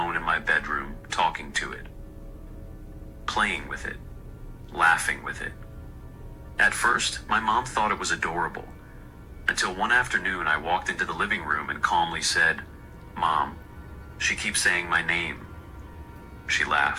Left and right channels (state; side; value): identical; both; correlation 1.00